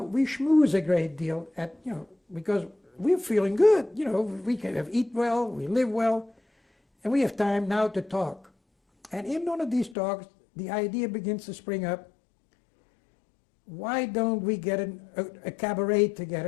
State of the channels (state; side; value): drops out; right; at 10.0 s